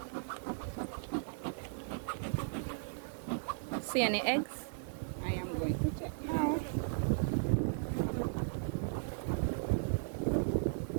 See any eggs? I am going to check now.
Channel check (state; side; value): silent; left; digital silence